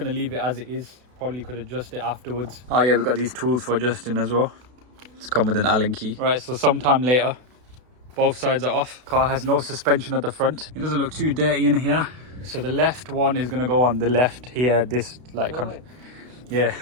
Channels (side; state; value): left; late; 32 ms